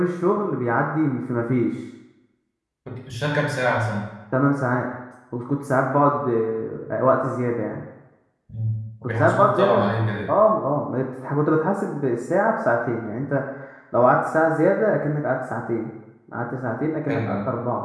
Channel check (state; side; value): identical; both; correlation 1.00